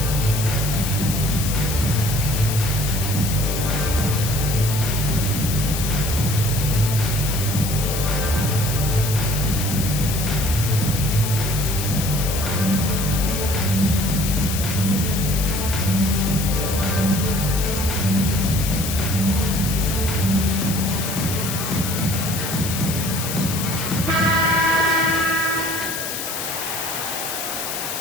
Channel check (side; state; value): left; noise; hiss, 5 dB below the sound